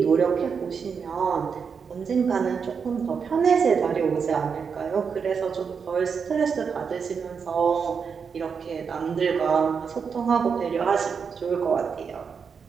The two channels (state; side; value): quieter; left; 6.1 dB